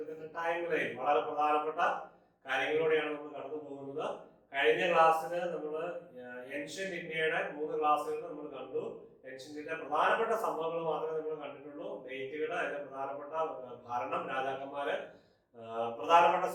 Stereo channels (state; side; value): identical; both; correlation 1.00